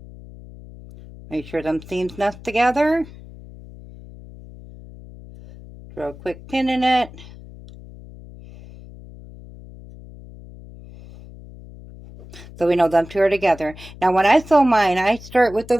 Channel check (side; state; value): left; noise; hum, 18 dB below the sound